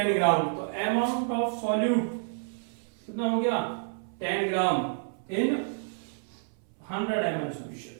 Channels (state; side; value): silent; left; 58 dB below the other